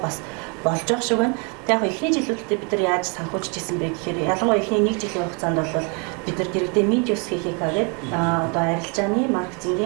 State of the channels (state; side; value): quieter; left; 34.6 dB